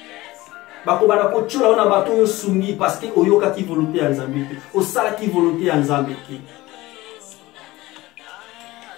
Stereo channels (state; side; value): quieter; right; 18.9 dB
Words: Bakobana kochola ona bato yo sungi parce que oyoka ki volonté ya Nzambe te. Osala ki volonté ya Nzambe te.